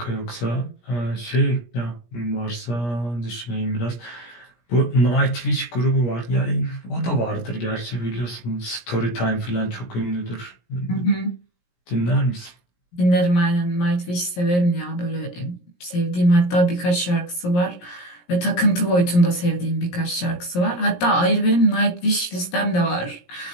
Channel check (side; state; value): right; late; 17 ms